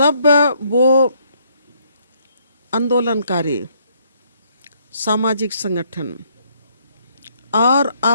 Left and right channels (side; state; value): both; inverted; correlation -0.69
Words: वो आंदोलनकारी सामाजिक संगठन और